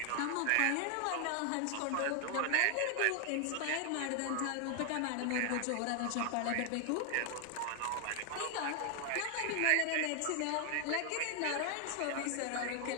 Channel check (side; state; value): both; different; correlation 0.00